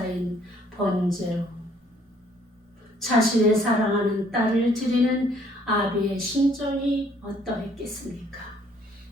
번제로 자신의 사랑하는 딸을 드리는 아비의 심정이 어떠했겠습니까?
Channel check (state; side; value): normal; both; correlation 0.62